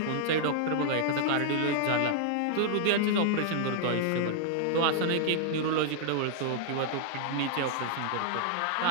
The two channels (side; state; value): both; different; correlation -0.01